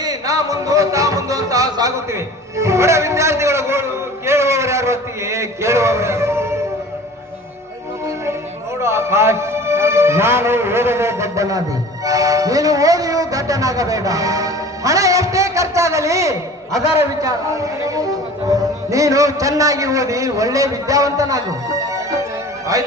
ನಾ ಮುಂದು ತಾ ಮುಂದು ಅಂತ ಸಾಗುತ್ತಿವೆ. ಬಡ ಕೇಳುವವರು ನೋಡು ಆಕಾಶ್, ನಾನು ಓದದೆ ದಡ್ಡನಾದಿ, ನೀನು ಓದಿಯೂ ದಡ್ಡನಾಗಬೇಡ. ಹಣ ಎಷ್ಟೇ ಖರ್ಚಾಗಲಿ ಅದರ ವಿಚಾರ. ನೀನು ಚೆನ್ನಾಗಿ ಓದಿ ಒಳ್ಳೆ ವಿದ್ಯಾವಂತನಾಗು.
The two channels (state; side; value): normal; both; correlation 0.42